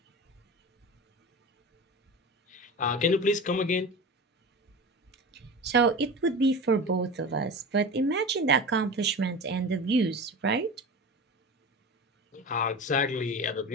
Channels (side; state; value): both; normal; correlation 0.30